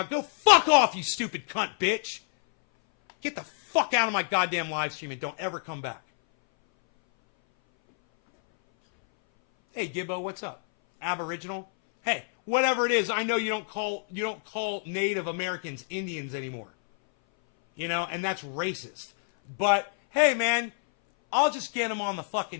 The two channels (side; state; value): right; silent; 58 dB below the other